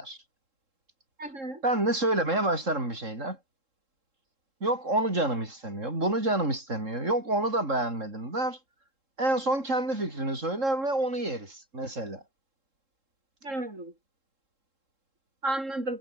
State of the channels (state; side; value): late; left; 3.7 ms